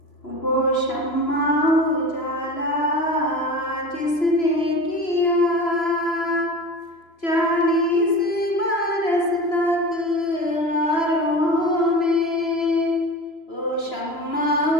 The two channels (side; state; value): right; late; 3.0 ms